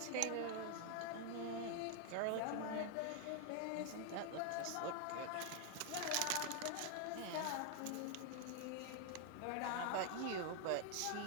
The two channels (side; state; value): both; different; correlation 0.00